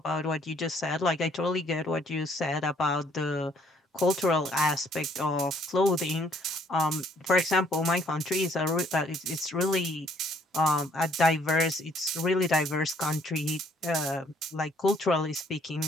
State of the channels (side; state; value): both; normal; correlation 0.64